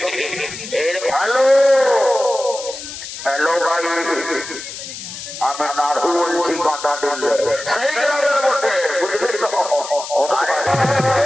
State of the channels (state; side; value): noise; left; hiss, 10 dB below the sound